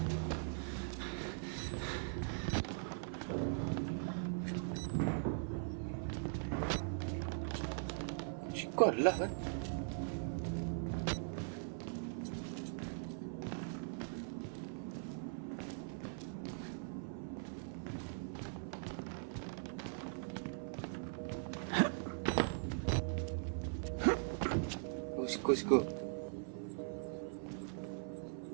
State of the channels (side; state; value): left; silent; 50 dB below the other